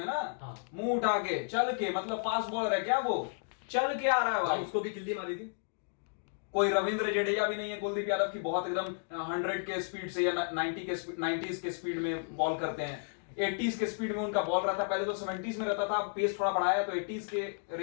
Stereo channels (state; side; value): silent; right; digital silence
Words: ना, मुंह उठा के चल के, मतलब फास्ट बॉलर है क्या वो, चल के आ रहा है भाई। उसको भी किल्ली मारी थी। कोई रविंद्र जडेजा भी नहीं है कुलदीप यादव की बहुत एकदम 100 के स्पीड से या 90s के स्पीड में बॉल करते हैं, 80s के स्पीड में उनका बॉल रहता है। पहले तो 70s में रहता था, पेस थोड़ा बढ़ाया तो 80s के